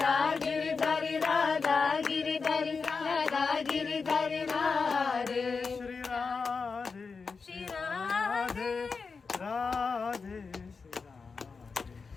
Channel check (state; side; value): quieter; right; 4.9 dB